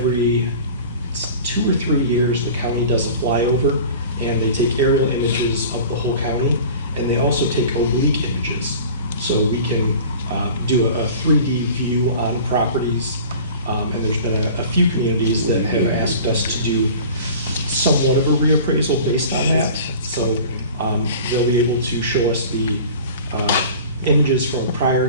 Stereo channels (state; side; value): inverted; both; correlation -0.41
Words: 2 or 3 years, the county does a flyover, and they take aerial images of the whole county, and they also take oblique images. So we can do a 3D view on properties, and there's been a few communities that have asked us to do somewhat of a reappraisal based on that. So they'll be able to show us the images from the